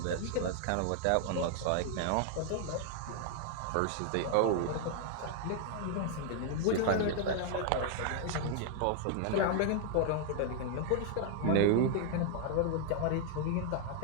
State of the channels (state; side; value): different; both; correlation 0.00